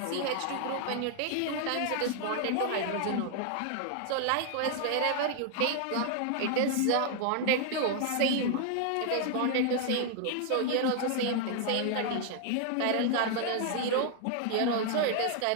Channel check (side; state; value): both; different; correlation 0.00